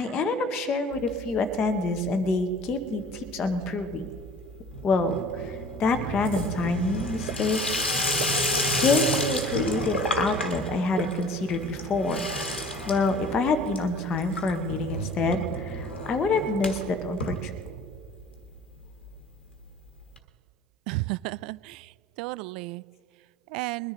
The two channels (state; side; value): normal; both; correlation 0.47